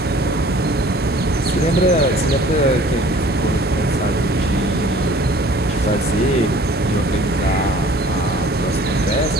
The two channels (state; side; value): normal; both; correlation 0.50